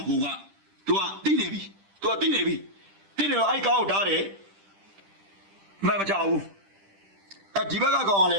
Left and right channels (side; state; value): left; late; 10 ms